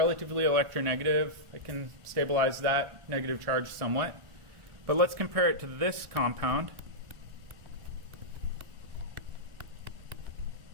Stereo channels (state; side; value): late; left; 1.4 ms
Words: electronegative. I can stabilize that negative charge somewhat. But let's compare it to this compound.